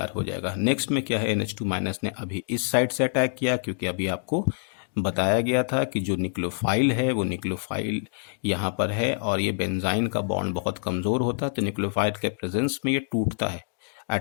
हो जाएगा। नेक्स्ट में क्या है, NH2 माइनस ने अभी इस साइड से अटैक किया, क्योंकि अभी आपको बताया गया था कि जो न्यूक्लियोफाइल है वो न्यूक्लियोफाइल यहाँ पर है और ये बेंजाइन का बॉन्ड बहुत कमज़ोर होता है, तो न्यूक्लियोफाइल के प्रेजेंस में ये टूटता है।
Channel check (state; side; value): silent; right; digital silence